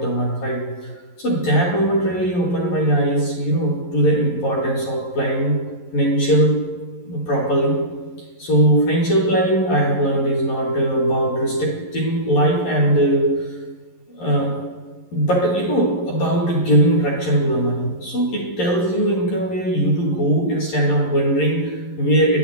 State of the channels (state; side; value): late; right; 11 ms